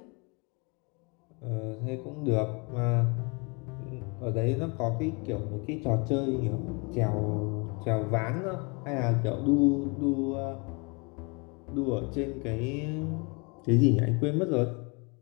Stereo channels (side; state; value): right; quieter; 31.2 dB